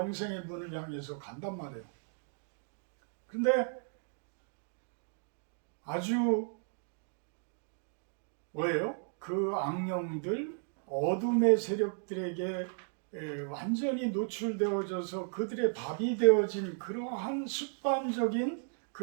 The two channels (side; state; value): left; silent; 55 dB below the other